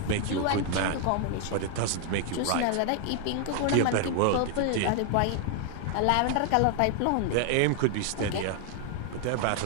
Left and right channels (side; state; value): both; different; correlation 0.00